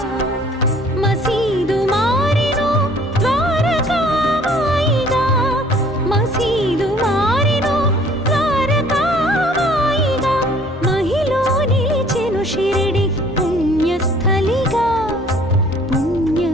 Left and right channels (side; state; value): both; normal; correlation 0.56